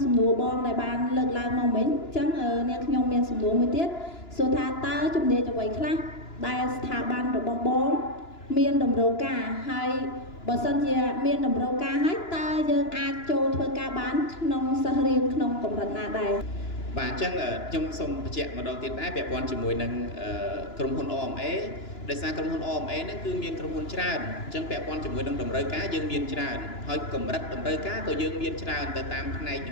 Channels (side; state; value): right; late; 2.9 ms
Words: សំណួរបងដែលបានលើកឡើងមកមិញអញ្ចឹងអ្នកខ្ញុំមានសំណួរមួយទៀតសួរថាតើជំនាញអ្វីខ្លះដែលស្ថាប័នរបស់បងមានតម្រូវការហើយបើសិនជាមានតម្រូវការហើយតើយើងអាចចូលធ្វើការបានក្នុងសិស្សរៀនក្នុងកម្រិតណាដែរបាទអញ្ចឹងខ្ញុំសូមបញ្ជាក់ម្ដងទៀតដែរពាក់ព័ន្ធជាមួយនឹងក្រុមហ៊ុន OMA ដោយសារក្រុមហ៊ុន OMA ហ្នឹងគឺមានក្រុមហ៊ុនច្រើនអញ្ចឹងពាក់ព័ន្ធជាមួយនឹងតម្រូវការយើងមានច្រើនហើយកម្រិតតម្រូវការក៏យើងមានច្រើនទៅតាមផ្នែកនី